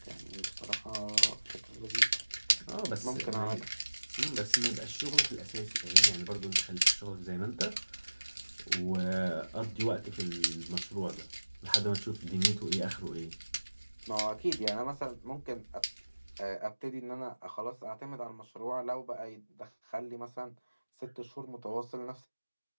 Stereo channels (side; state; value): both; inverted; correlation -1.00